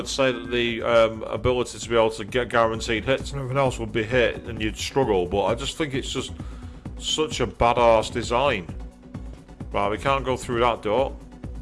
say that the ability to be able to get guaranteed hits and everything else would be hit and you'd struggle, but I just think it's just such a badass design. Right, we can't go through that door.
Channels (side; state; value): both; identical; correlation 1.00